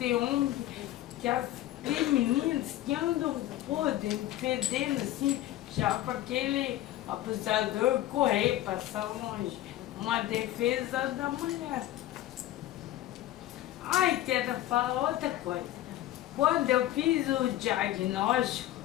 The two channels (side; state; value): right; quieter; 14.3 dB